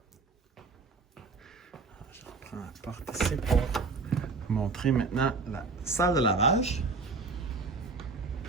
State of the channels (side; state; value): left; quieter; 4.1 dB